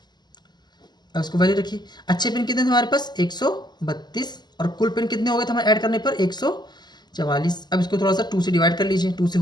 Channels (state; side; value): late; right; 0.21 ms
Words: अब उसको वैल्यू रखिए। अच्छे पेन कितने थे हमारे पास, 132, और कुल पेन कितने हो गए थे हमारे ऐड करने पर, 144। अब इसको थोड़ा सा 2 से डिवाइड कर लीजिए, 2 से